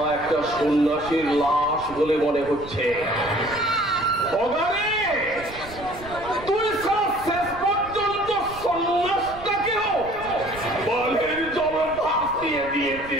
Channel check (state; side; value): noise; right; rumble, 16 dB below the sound